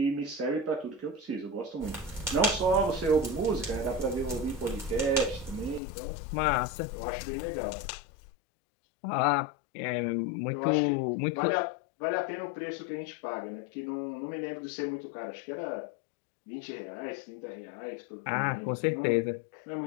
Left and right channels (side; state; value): right; drops out; at 5.8 s